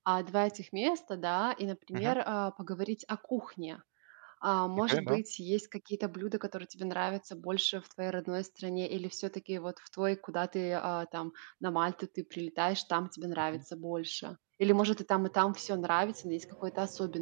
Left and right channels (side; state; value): left; silent; digital silence